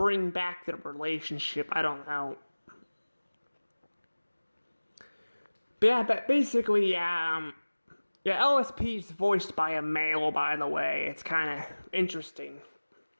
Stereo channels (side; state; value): both; inverted; correlation -1.00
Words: back their relationship. I don't know. But yeah, but basically, yeah, LSP is voiced by a male, by the way. It's kind of interesting.